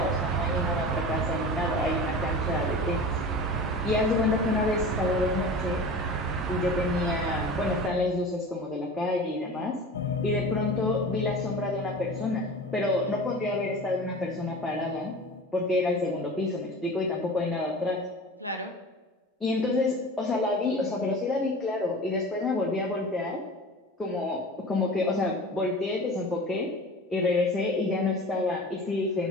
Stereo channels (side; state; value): both; normal; correlation 0.36